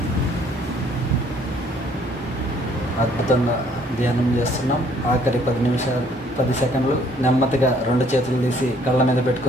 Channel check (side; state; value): both; normal; correlation 0.62